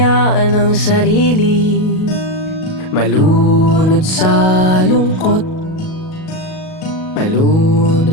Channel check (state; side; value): late; right; 37 ms